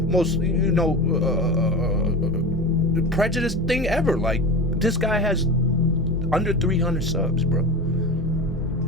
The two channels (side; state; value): both; normal; correlation 0.28